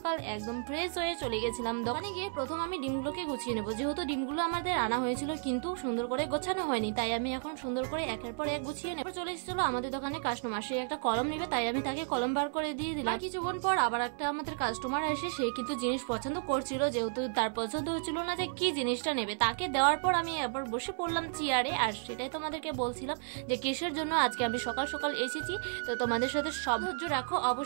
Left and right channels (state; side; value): silent; left; digital silence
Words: একদম ফ্রেশ হয়ে চলে গেছিলাম দোকানে। গিয়ে প্রথম আমি ডিমগুলোকে গুছিয়ে নেবো, যেহেতু ডিমগুলো আমাদের আনা হয়েছিল কিন্তু সুন্দর করে গোছানো হয়নি, তাই আমি এখন সুন্দর করে একের পর এক গুছিয়ে নেব। চলে এসেছিল আমাদের দোকানে কাস্টমার, সে একটা কলম নেবে, তাই আমি তাকে কলম বার করে দিয়ে দিলাম। কিছুক্ষণ পর আবার একটা আমাদের কাস্টমার আসে, সে কিন্তু জিনিস পছন্দ করছিল, যেহেতু তার পছন্দ হচ্ছিল না যে কি জিনিসটা নেবে। তাকে দেওয়ার পর আমি আবার বসে পড়লাম চেয়ারে, আর সেটাই তোমাদেরকে বলছিলাম যে কিসের জন্য আজকে আমি সকাল সকাল এসেছি। তো তোমাদের সাথে সব ধৈর্য রাখো,